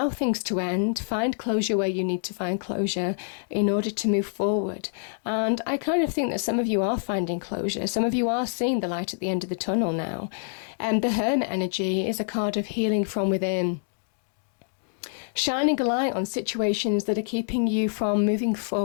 things to end, find closure where you need to find closure in order to move forward. And I kind of think that some of you are finding closure. Some of you are seeing the light at the end of the tunnel now. And the Hermit energy is a card of healing from within, shining a light on situations that are keeping you from moving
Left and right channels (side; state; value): right; silent; digital silence